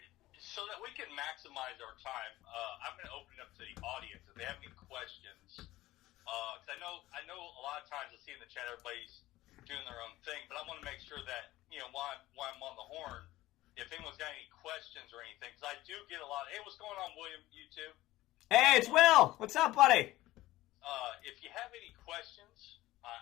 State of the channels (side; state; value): right; quieter; 16.8 dB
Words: So that we can maximize our time, I'm going to open it up to the audience. If they have any questions, because I know a lot of times I see in the chat everybody's doing their own thing, but I want to make sure that, you know, while I'm on the horn, if anyone's got any questions or anything, because I do get a lot of, hey, what's going on, William, YouTube? Hey, it's Will. What's up, buddy? If you have any questions,